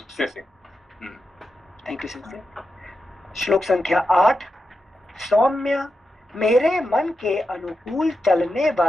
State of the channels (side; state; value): both; normal; correlation 0.88